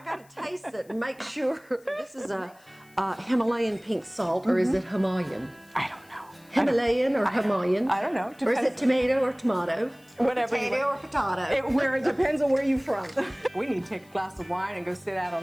gotta taste it and make sure. This is a Himalayan pink salt, or is it Himalayan? I don't know. Himalayan or Himalayan? I don't know. Or is it Depends. tomato or tomato? Whatever you Potato want. or potato? It depends on where you're from. We need to take a glass of wine and go sit out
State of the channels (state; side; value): noise; left; hiss, 29 dB below the sound